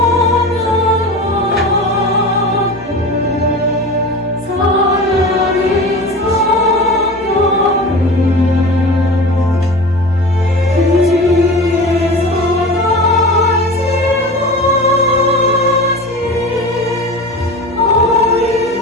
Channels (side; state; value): both; normal; correlation 0.32